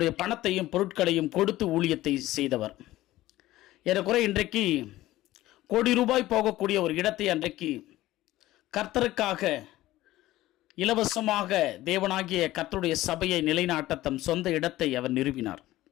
பணத்தையும் பொருட்களையும் கொடுத்து ஊழியத்தை செய்தவர். ஏறக்குறை இன்றைக்கு கோடி ரூபாய் போகக்கூடிய ஒரு இடத்தை அன்றைக்கு கர்த்தருக்காக இலவசமாக தேவனாகிய கர்த்தருடைய சபையை நிலைநாட்ட தம் சொந்த இடத்தை அவர் நிறுவினார்.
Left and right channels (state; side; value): quieter; right; 16.1 dB